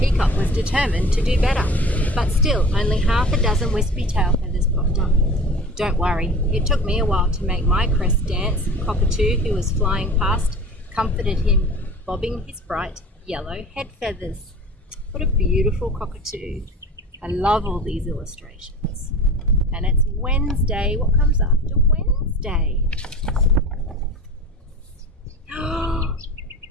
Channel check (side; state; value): both; normal; correlation 0.38